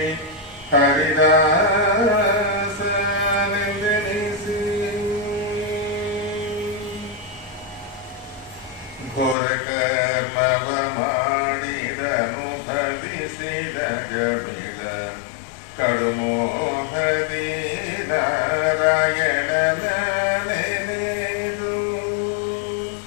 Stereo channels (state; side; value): drops out; right; at 9.3 s